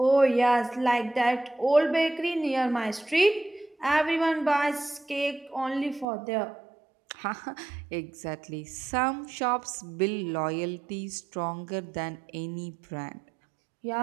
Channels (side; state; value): left; drops out; at 6.1 s